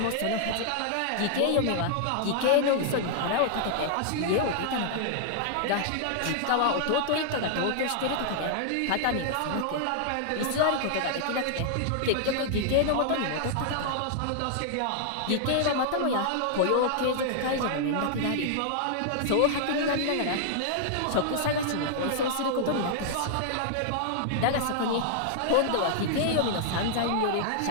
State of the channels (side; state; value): both; different; correlation -0.01